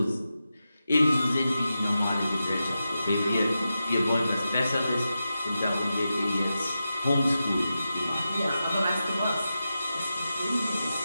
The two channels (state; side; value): inverted; both; correlation -0.90